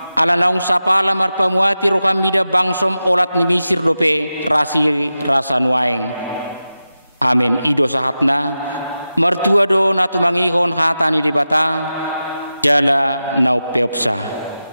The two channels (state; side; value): inverted; both; correlation -0.93